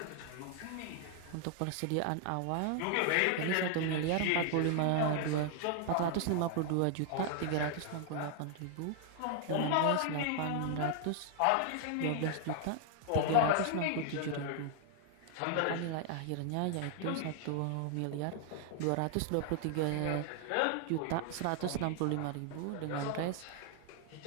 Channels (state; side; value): different; both; correlation 0.00